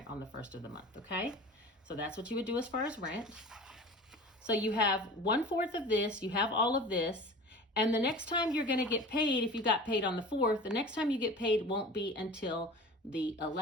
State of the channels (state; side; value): normal; both; correlation 0.38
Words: on the 1st of the month, okay? So that's what you would do as far as rent. So you have 1/4 of this, you have all of this, and the next time you're going to get paid, if you got paid on the 4th, the next time you get paid won't be until the